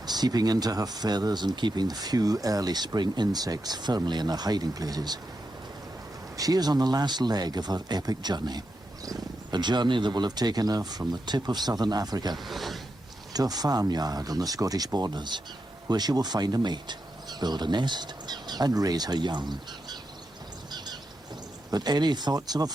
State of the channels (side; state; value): both; normal; correlation 0.86